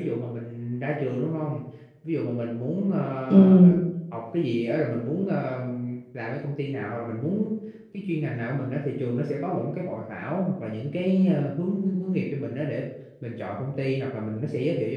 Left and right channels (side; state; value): both; identical; correlation 1.00